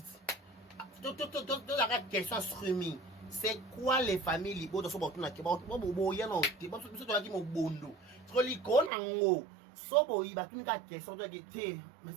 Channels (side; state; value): left; drops out; at 8.9 s